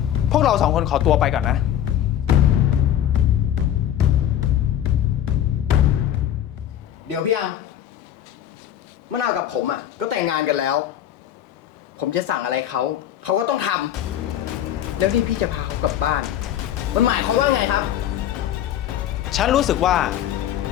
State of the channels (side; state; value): right; quieter; 11.1 dB